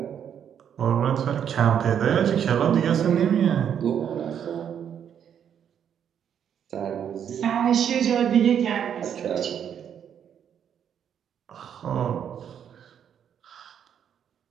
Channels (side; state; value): left; quieter; 8.7 dB